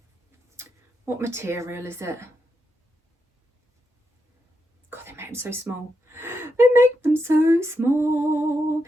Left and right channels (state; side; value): normal; both; correlation 0.83